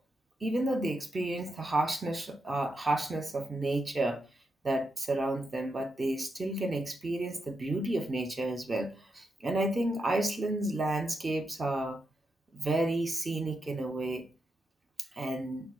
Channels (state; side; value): normal; both; correlation 0.85